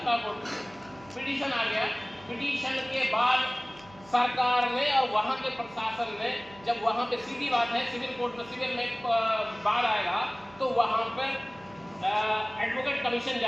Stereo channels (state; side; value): noise; right; hum, 24 dB below the sound